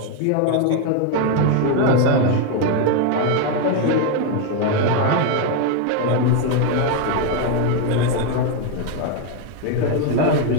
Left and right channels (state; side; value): different; both; correlation 0.02